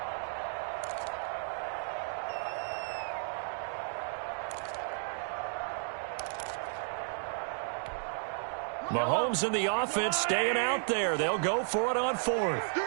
Mahomes and the offense staying out there. They'll go for it on 4th.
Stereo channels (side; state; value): left; silent; digital silence